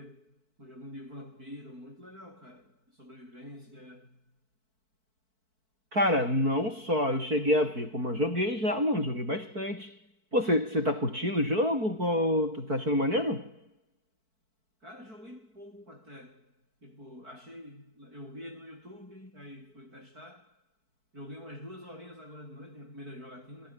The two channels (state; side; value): late; left; 4.5 ms